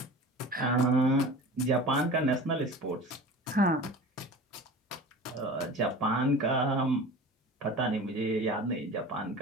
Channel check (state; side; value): normal; both; correlation 0.37